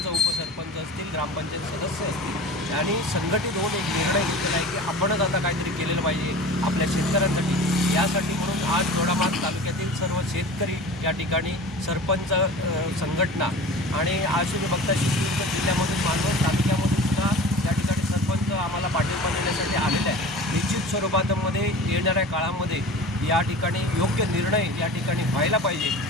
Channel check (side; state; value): both; normal; correlation 0.37